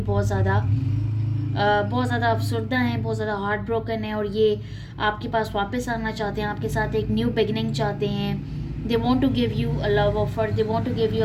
बहुत ज़्यादा अफसरदा हैं, बहुत ज़्यादा हार्ट ब्रोकन है. और ये आपके पास वापस आना चाहते हैं, आपके साथ एक न्यू बिगनिंग चाहते हैं. They want to give you a love offer, they want to give you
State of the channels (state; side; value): identical; both; correlation 1.00